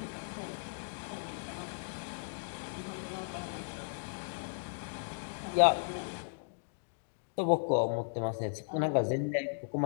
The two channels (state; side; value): silent; right; digital silence